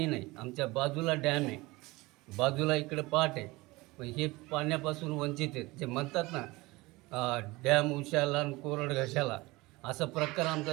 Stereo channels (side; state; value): left; quieter; 21.8 dB